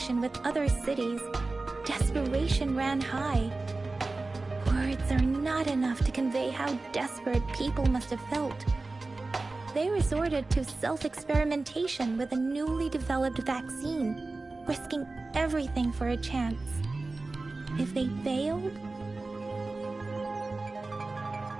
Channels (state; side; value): quieter; left; 3.4 dB